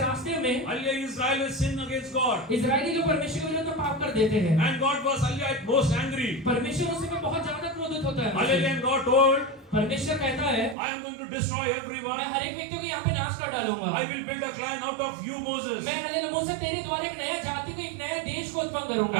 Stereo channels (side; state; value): left; drops out; at 10.8 s